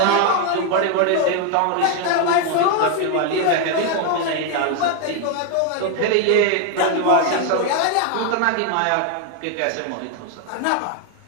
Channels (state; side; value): different; both; correlation 0.01